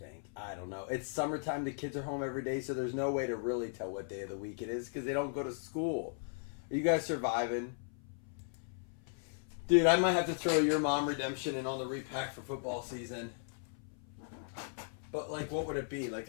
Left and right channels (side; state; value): right; silent; 53 dB below the other